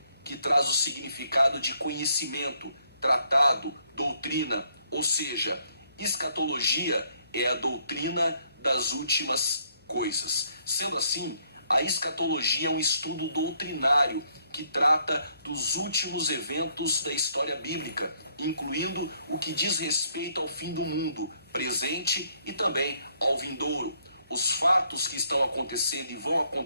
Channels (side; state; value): both; inverted; correlation -0.69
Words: que traz o significado de conhecimento, tratado, doutrina. Ou seja, escatologia é a doutrina das últimas coisas. Sendo assim, a escatologia é um estudo doutrinário que trata dos últimos eventos da história bíblica, incluindo o que diz respeito ao fim do mundo, presente e também ao vindouro. Os fatos que estão acontecendo e vão